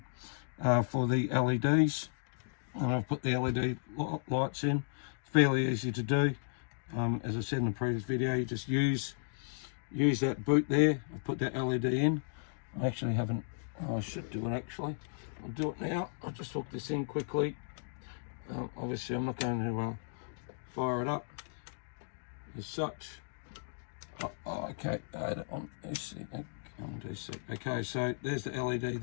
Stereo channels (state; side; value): silent; right; digital silence